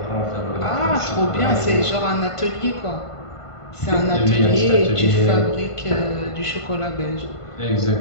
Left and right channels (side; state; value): right; late; 1.5 ms